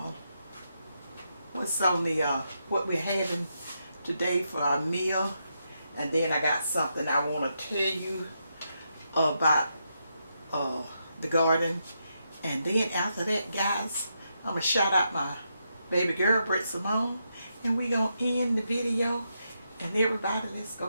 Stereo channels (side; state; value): both; inverted; correlation -0.83